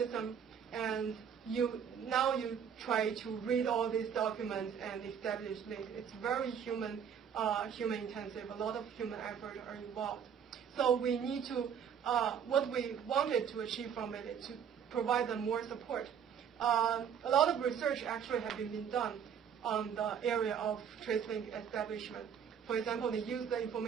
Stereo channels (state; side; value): quieter; left; 7.9 dB